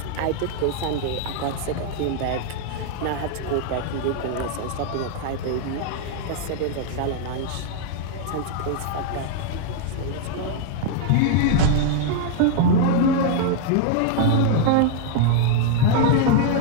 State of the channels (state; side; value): different; both; correlation 0.00